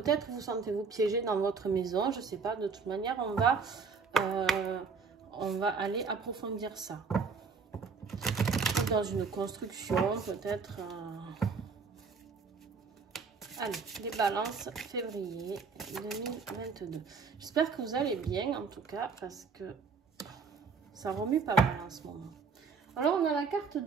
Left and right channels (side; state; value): left; quieter; 5.1 dB